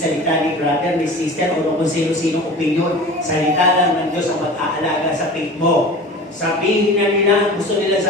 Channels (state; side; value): normal; both; correlation 0.37